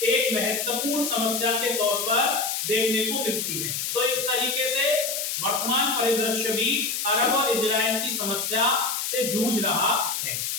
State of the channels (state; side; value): noise; left; hiss, 2 dB below the sound